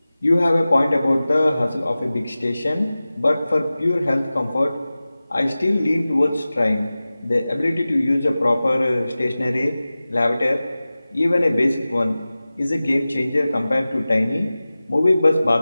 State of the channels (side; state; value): both; inverted; correlation -0.97